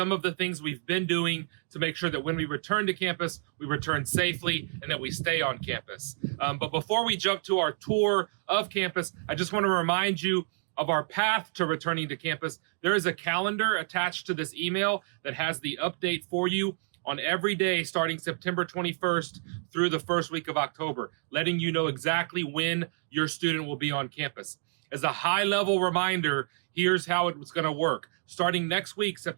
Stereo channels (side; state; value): left; silent; 58 dB below the other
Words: of the things we've been doing to make sure that when we return to campus, we return safely and that we stay on campus. But before we jump to our tour of campus, I just want to remind you of our path to returning to campus. There is a calendar attached to this email that has the update for you on every day starting September 21st through the first week of October, letting you know exactly when your student will be on campus. As a high-level reminder, here's how it's going to work. Starting next week,